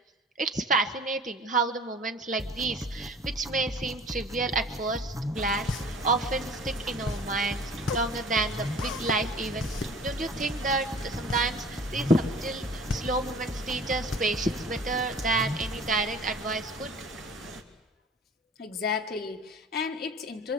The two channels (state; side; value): normal; both; correlation 0.45